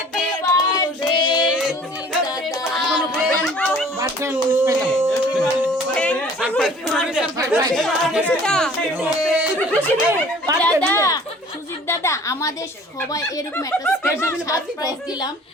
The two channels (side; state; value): both; normal; correlation 0.51